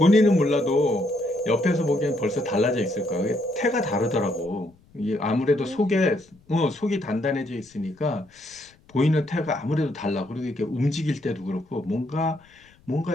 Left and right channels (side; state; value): left; noise; rumble, 30 dB below the sound